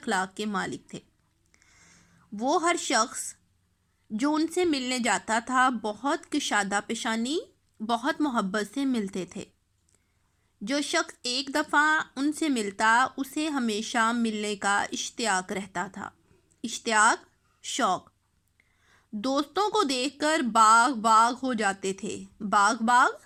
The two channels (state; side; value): identical; both; correlation 1.00